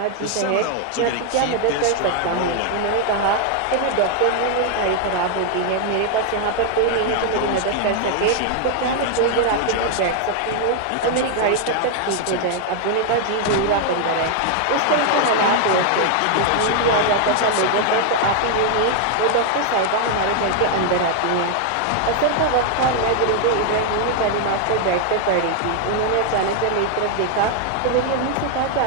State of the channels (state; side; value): different; both; correlation 0.00